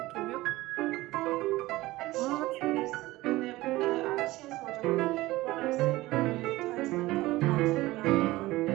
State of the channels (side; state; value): left; quieter; 18.6 dB